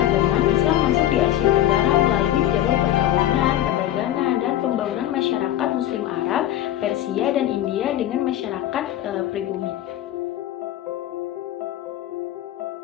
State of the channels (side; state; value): right; quieter; 12.8 dB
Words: Islam masuk di Asia Tenggara melalui jalur perkawinan, perdagangan, dan pembangunan masyarakat Muslim Arab, Persia, dan India dengan masyarakat pribumi.